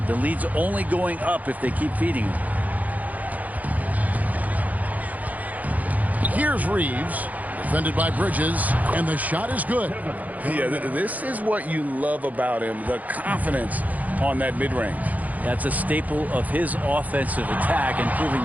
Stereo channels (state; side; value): late; left; 0.077 ms